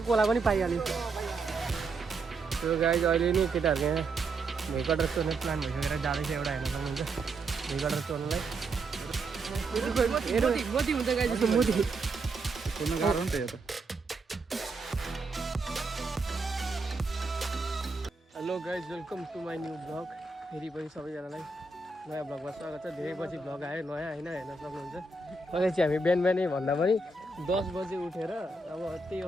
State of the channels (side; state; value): left; quieter; 3.3 dB